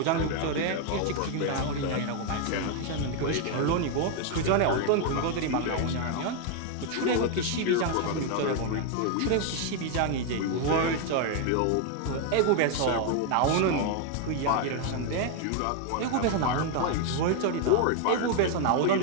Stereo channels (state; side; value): different; both; correlation 0.01